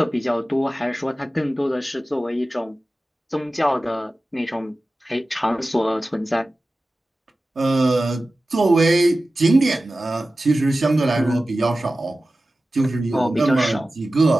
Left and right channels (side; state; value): both; normal; correlation 0.95